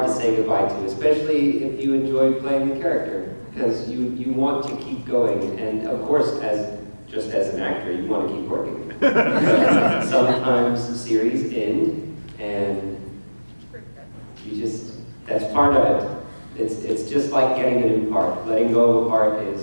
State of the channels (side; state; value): both; inverted; correlation -1.00